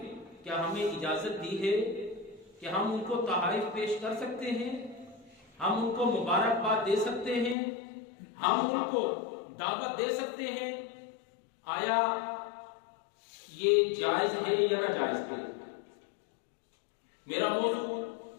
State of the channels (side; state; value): right; drops out; at 7.6 s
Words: کیا ہمیں اجازت دی ہے کہ ہم ان کو تحائف پیش کر سکتے ہیں، ہم ان کو مبارکباد دے سکتے ہیں، ہم ان کو دعوت دے سکتے ہیں؟ آیا یہ جائز ہے یا ناجائز ہے؟ میرا موضوع